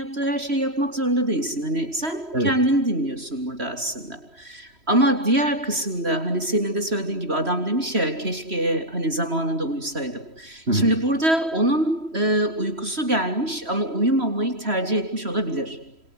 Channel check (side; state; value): left; late; 3.1 ms